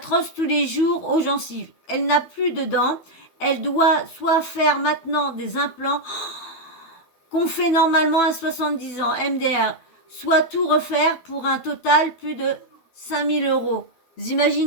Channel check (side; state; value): right; late; 12 ms